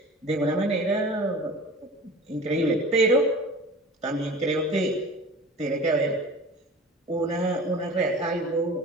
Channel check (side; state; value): both; normal; correlation 0.40